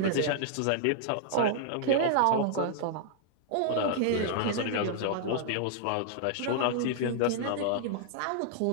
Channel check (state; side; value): different; both; correlation -0.01